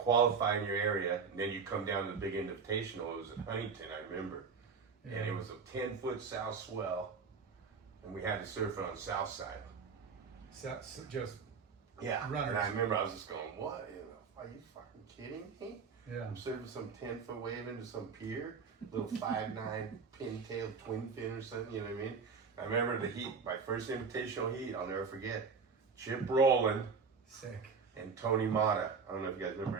in your area, and then you come down to the big invitational. It was at Huntington, I remember, and it was a 10-foot south swell, and we had to surf it on the south side. So just Yeah, runners. and I remember I was just going, "What? Are you fucking kidding me? yeah. I'm surfing some 10-foot wave into some pier, little 5'9" pintail twin fin or something." You know what I mean? I remember the heat, my first invitational heat. I'll never forget. Chip Rowland Sick. and Tony Mata. I don't know if you guys remember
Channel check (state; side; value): quieter; left; 5.4 dB